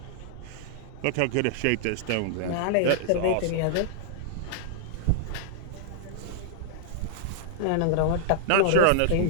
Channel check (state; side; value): different; both; correlation -0.01